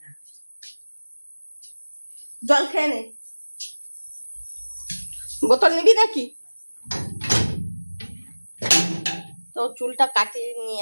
জল খেয়ে নে, বোতল নিবি নাকি? তো চুলটা কাটিয়ে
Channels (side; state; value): both; inverted; correlation -1.00